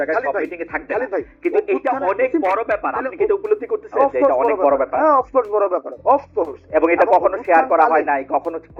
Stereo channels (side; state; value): both; identical; correlation 1.00